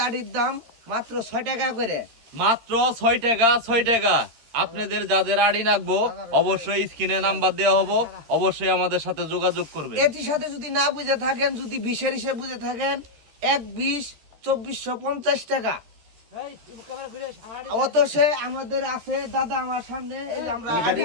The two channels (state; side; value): late; left; 13 ms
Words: আটির দাম মাত্র 6 টাকা করে। মাত্র 6 টাকা, 6 টাকা। আপনাদের যাদের আড়ি লাগবো অবশ্যই স্ক্রিনে নাম্বার দেওয়া হবো, অবশ্যই আমাদের সাথে যোগাযোগ করবেন। এটির সাথে যদি না বুঝে থাকেন, যদি 20-এর হিসেবে বুঝে থাকেন, 1-20 2450 টাকা। অতঃ আমাদের আছে দাদা আমার সামনে, এই যে আমরা